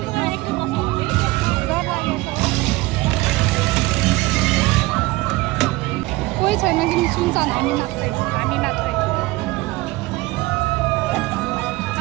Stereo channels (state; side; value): quieter; left; 20.6 dB